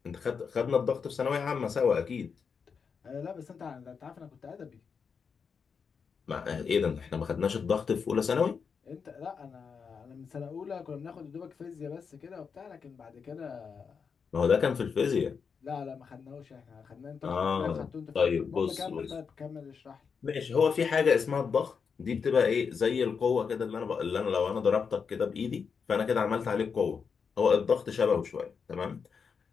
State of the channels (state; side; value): quieter; right; 6.0 dB